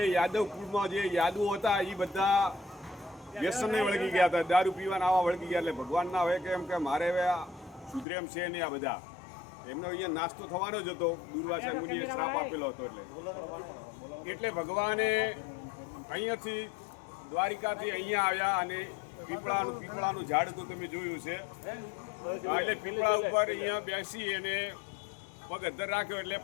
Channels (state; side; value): drops out; right; at 8.1 s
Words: યાદવ કુળમાં જે યાદવો હતા એ બધા વ્યસનને વળગી ગયા હતા, દારૂ પીવાના આવા વળગી ગયા। એટલે ભગવાનના હવે કે એમ કે મારે હવે સુધરેમ છે નહીં આ બધા, એમનો અહીંયા નાસ્તો થવાનો જ હતો, દુર્વાસા મુનિએ શ્રાપ આપેલો હતો। એટલે ભગવાને અહીંયાથી દ્વારિકાથી અહીંયા આવ્યા અને પીપળાનું ઝાડ તો તમે જોયું છે, એટલે પીપળા ઉપર અહીંયા બેસી અને પગ અધ્ધર રાખ્યો। એટલે